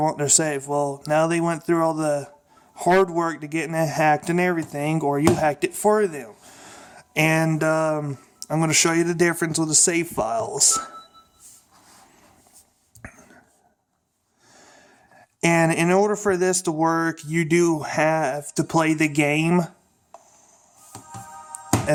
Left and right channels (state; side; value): identical; both; correlation 1.00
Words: their save. Well, now they went through all the hard work to getting it hacked and everything, or you hacked it for them. And I'm going to show you the difference with the save files. And in order for this to work, you do have to play the game